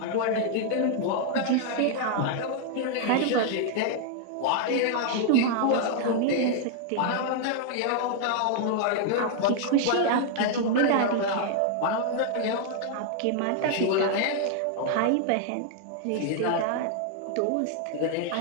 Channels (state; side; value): different; both; correlation 0.00